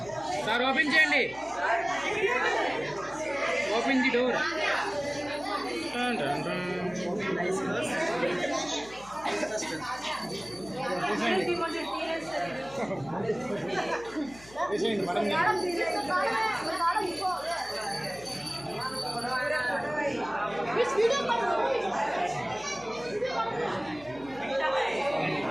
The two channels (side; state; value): left; noise; hum, 21 dB below the sound